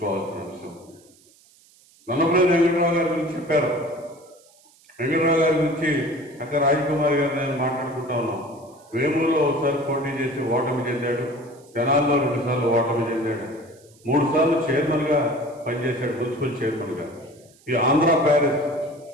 అంశం. నన్నపనేని వెంకట్రావు గారి గురించి చెప్పారు. వెంకట్రావు గారి గురించి అక్క రాజకుమారి గారు నేను మాట్లాడుకుంటా ఉన్నాం. వేమూరులో ఒకసారి పోటీ చేసి ఓటమి చెందాడు. తెనాల్లో 2 సార్లు ఓటమి చెందాడు. 3 సార్లు చైర్మన్ గా పనిచేశాడు, మున్సిపల్ చైర్మన్ గా. ఈ ఆంధ్ర ప్యారిస్,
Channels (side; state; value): right; noise; hiss, 29 dB below the sound